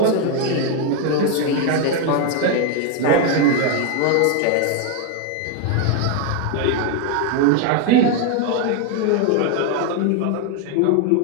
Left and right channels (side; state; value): both; different; correlation 0.01